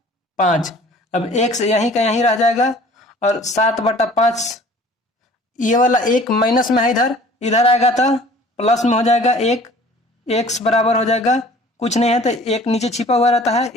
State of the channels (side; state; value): both; normal; correlation 0.50